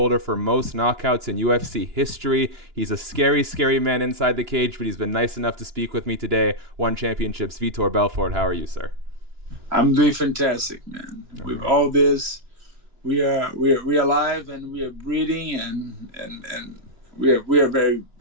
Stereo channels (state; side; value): late; left; 2.9 ms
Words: for most knockouts in UFC history. He's a scary, scary man inside the cage, but he's been nice enough to speak with me today. Won championships. Vitor Belfort, how are you, sir? I'm doing fantastic, man. All With right. all this, we are alive and we are breathing and we are very